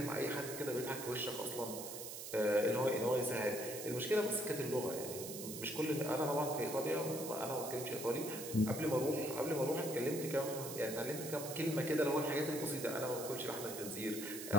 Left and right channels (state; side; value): noise; right; hiss, 8 dB below the sound